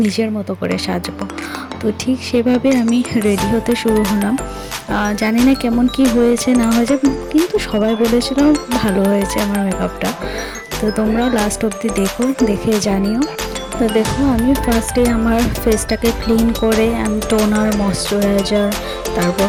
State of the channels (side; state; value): both; identical; correlation 1.00